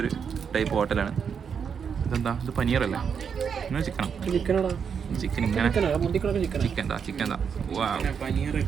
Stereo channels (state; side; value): quieter; left; 6.9 dB